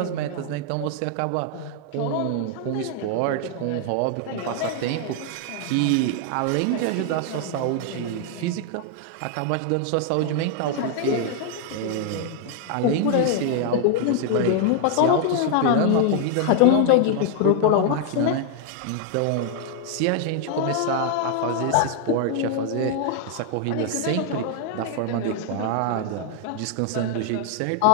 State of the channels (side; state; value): both; different; correlation 0.00